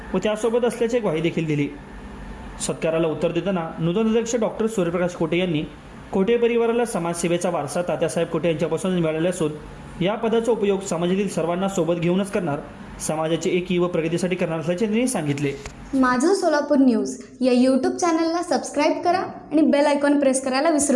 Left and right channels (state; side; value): identical; both; correlation 1.00